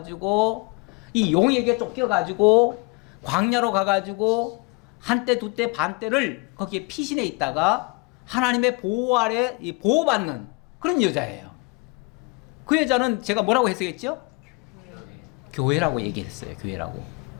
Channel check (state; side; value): quieter; right; 28.9 dB